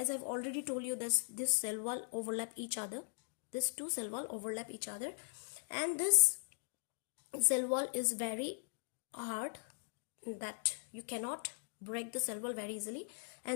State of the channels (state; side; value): silent; right; digital silence